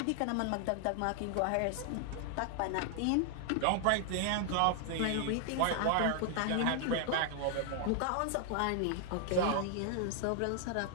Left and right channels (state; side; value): different; both; correlation 0.00